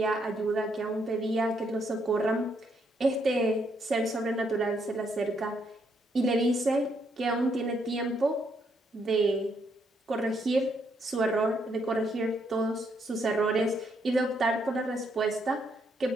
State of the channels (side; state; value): both; normal; correlation 0.74